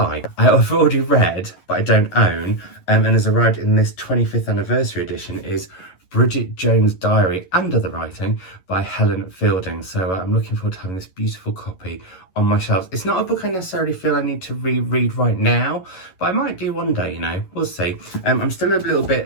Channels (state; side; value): late; right; 11 ms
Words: I've already read, but I don't own, and has arrived in this 25th anniversary edition, is Bridget Jones' Diary and Other Writing by Helen Fielding. So I'm looking forward to having this beautiful copy on my shelves. It's not a book I necessarily feel I need to reread right now, but I might do one day, you know, we'll see. I'm still a little